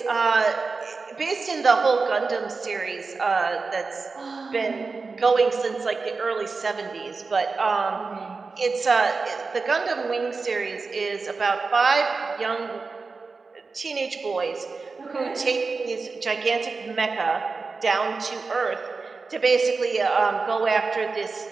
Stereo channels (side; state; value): left; quieter; 4.3 dB